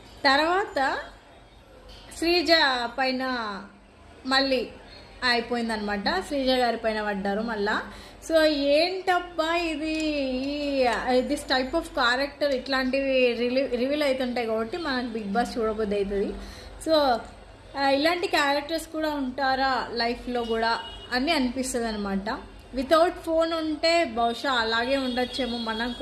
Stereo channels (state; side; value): identical; both; correlation 1.00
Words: తర్వాత శ్రీజ పైన మళ్ళీ అయిపోయిందనమాట. శ్రీజ గారి పైన పడ్డారు మళ్ళా. సో ఏంటబ్బా దిస్ టైప్ ఆఫ్ క్యారెక్టర్ ఇట్లాంటివి రివీల్ అవుతుంటాయి కాబట్టి మనకు బిగ్ బాస్ చూడబోద్ది అవుతుంది. సో ఇలాంటి క్యారెక్టర్స్ కూడా ఉంటారా లైఫ్లో కూడా అని అనిపిస్తుంది అనమాట. వితౌట్ ఫోన్ ఉంటే బహుశా అలాగే ఉండొచ్చేమో మనం